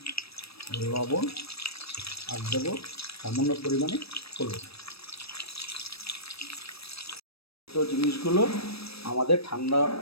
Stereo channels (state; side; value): late; right; 0.77 ms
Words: লবণ আর দেবো সামান্য পরিমাণে হলুদ। তো জিনিসগুলো আমাদের ঠান্ডা